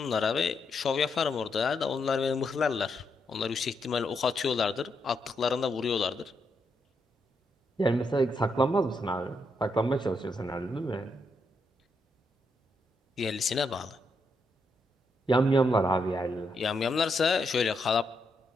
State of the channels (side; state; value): both; normal; correlation 0.80